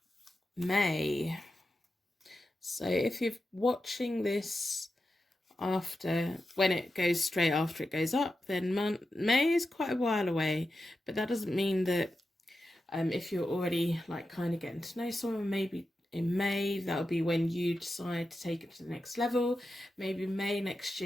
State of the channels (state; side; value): normal; both; correlation 0.90